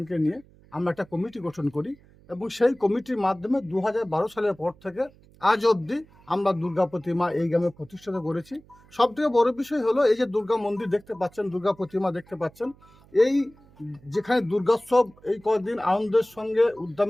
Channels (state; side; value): noise; right; hum, 27 dB below the sound